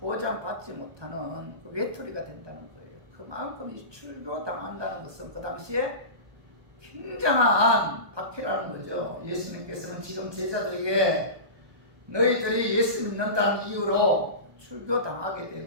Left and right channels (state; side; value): late; left; 1.2 ms